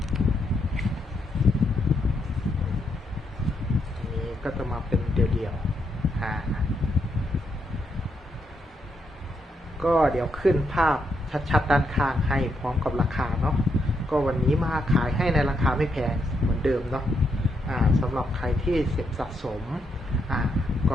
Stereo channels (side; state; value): both; normal; correlation 0.79